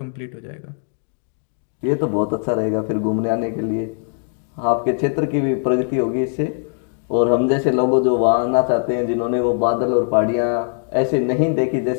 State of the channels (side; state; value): right; silent; digital silence